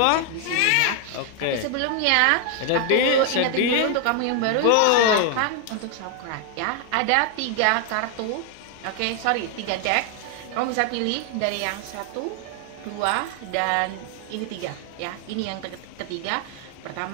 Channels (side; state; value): both; different; correlation 0.00